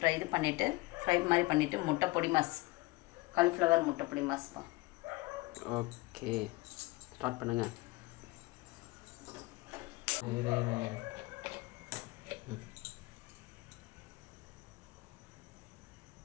மாதிரி பண்ணிவிட்டு முட்டை பொடி மாஸ், காலிஃப்ளவர் முட்டை பொடி மாஸ்ப்பா. ஓகே, ஸ்டார்ட் பண்ணுங்க.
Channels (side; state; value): right; quieter; 22.6 dB